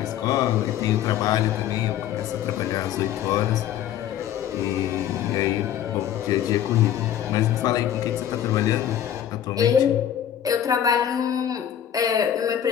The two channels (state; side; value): quieter; right; 10.4 dB